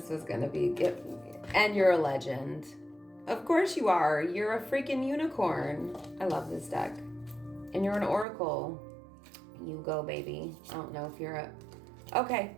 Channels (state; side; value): drops out; left; at 8.2 s